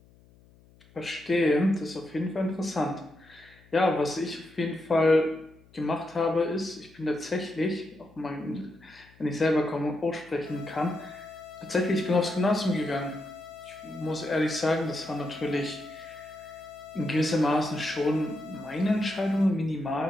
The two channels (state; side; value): noise; left; hum, 27 dB below the sound